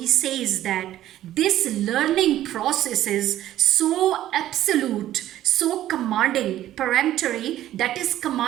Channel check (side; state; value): left; quieter; 13.2 dB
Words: says that this learning process is so absolute, so commanding, peremptory, that is